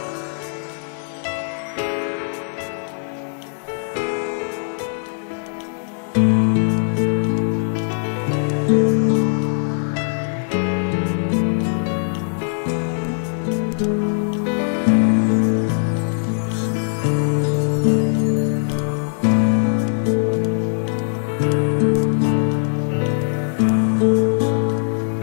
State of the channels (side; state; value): right; silent; 65 dB below the other